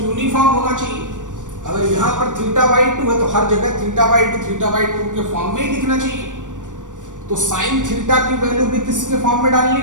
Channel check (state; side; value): late; left; 0.87 ms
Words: यूनिफॉर्म होना चाहिए। अगर यहाँ पर थीटा बाई 2 है तो हर जगह थीटा बाई 2 के फॉर्म में ही दिखना चाहिए। तो साइन थीटा की वैल्यू भी किसके फॉर्म में डालनी